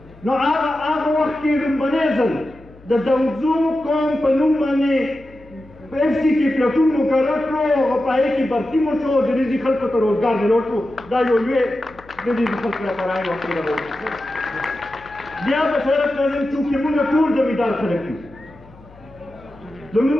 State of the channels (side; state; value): left; noise; hum, 23 dB below the sound